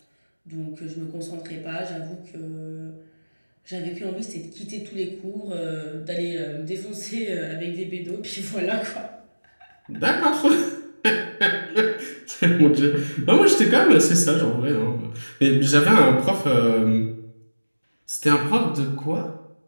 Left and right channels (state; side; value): inverted; both; correlation -1.00